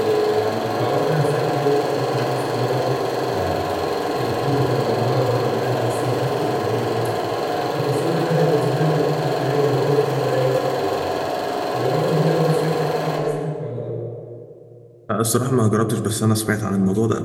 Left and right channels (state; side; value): identical; both; correlation 1.00